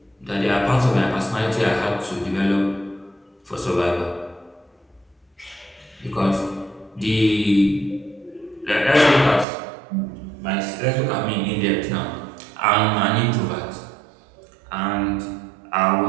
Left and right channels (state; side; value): drops out; left; at 9.5 s